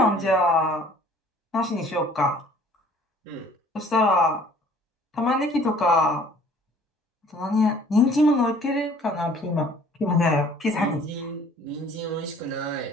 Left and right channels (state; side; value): normal; both; correlation 0.54